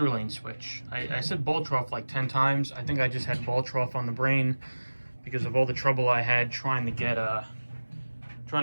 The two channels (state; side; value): inverted; both; correlation -1.00